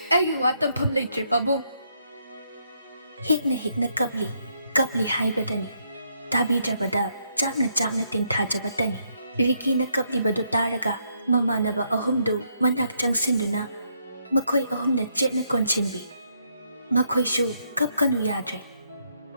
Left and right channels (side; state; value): both; inverted; correlation -0.75